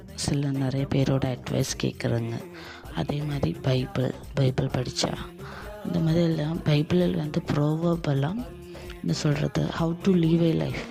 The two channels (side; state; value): both; identical; correlation 1.00